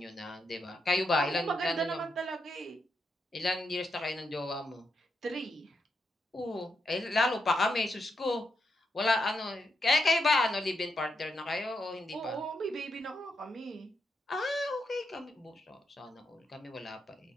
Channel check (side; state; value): both; normal; correlation 0.82